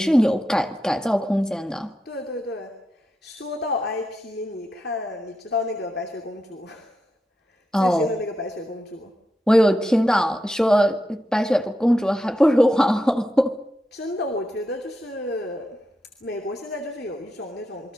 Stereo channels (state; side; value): normal; both; correlation 0.87